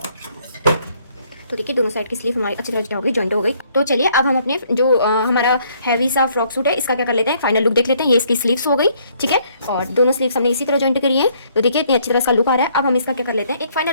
तो देखिए दोनों साइड की स्लीव हमारी अच्छी तरह हो गई, जॉइंट हो गई। तो चलिए अब हम अपने जो हमारा हैवी सा फ्रॉक सूट है इसका क्या कर लेते हैं, फाइनल लुक देख लेते हैं। ये इसकी स्लीव्स हो गई, ठीक है। और दोनों स्लीव्स हमने इसी तरह जॉइंट करी है। तो देखिए इतनी अच्छी तरह इसका लुक आ रहा है। अब हम इसका क्या कर लेते हैं, एक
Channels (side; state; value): both; inverted; correlation -0.66